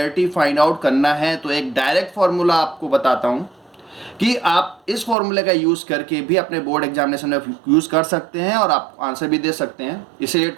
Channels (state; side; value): drops out; left; at 5.2 s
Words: फाइंड आउट करना है, तो एक डायरेक्ट फॉर्मूला आपको बताता हूं कि आप इस फॉर्मूले का यूज करके भी अपने बोर्ड एग्जामिनेशन में यूज कर सकते हैं और आप आंसर भी दे सकते हैं। इससे रिलेटेड